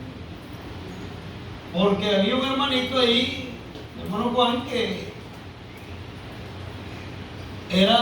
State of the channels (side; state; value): both; identical; correlation 1.00